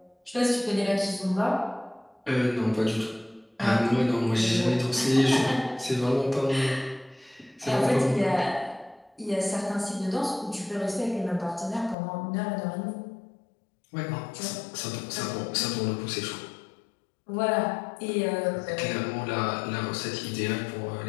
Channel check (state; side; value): drops out; right; at 12.0 s